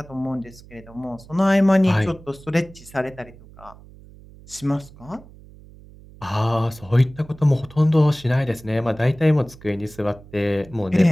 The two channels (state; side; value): noise; right; hum, 21 dB below the sound